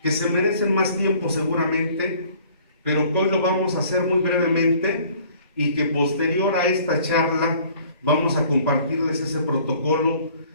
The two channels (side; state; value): both; inverted; correlation -0.55